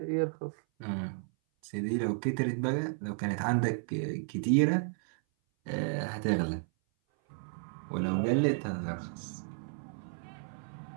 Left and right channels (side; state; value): left; silent; 56 dB below the other